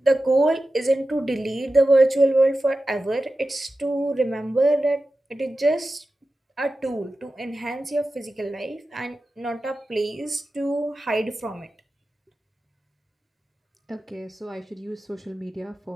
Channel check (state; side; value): normal; both; correlation 0.93